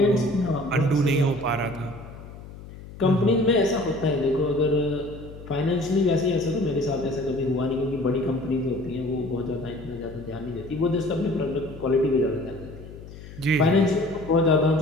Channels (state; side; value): noise; left; hum, 15 dB below the sound